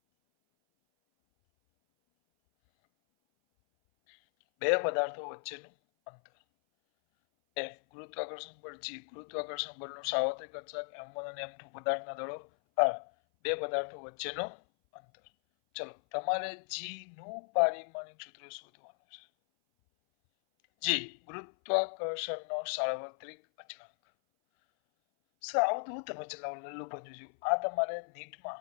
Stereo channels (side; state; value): right; silent; 54 dB below the other